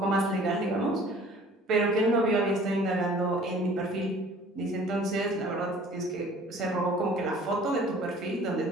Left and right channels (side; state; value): both; normal; correlation 0.50